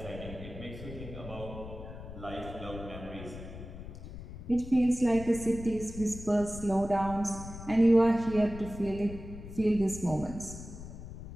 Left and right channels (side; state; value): left; noise; rumble, 11 dB below the sound